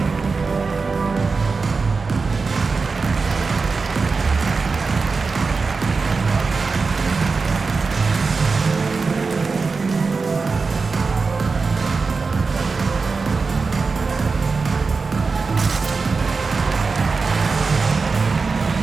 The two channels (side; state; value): left; quieter; 4.4 dB